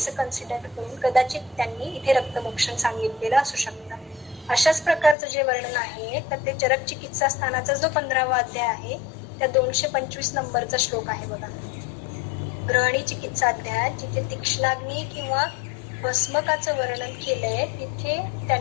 कन्सिडर करून कदाचित त्यांनी इथे रक्तमोक्षण सांगितलेलं असू शकतं. अशाच प्रकारचं जे वर्णन आहे तर ते चरक चिकित्सा स्थानाचा जो 15वा अध्याय आहे त्या 225 नंबरचा श्लोक आहे बघा, ग्रहणी चिकित्सा अध्याय, जिथे तीक्ष्णाग्नी किंवा भस्मकाचं वर्णन केलंय तिथे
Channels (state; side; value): drops out; right; at 5.2 s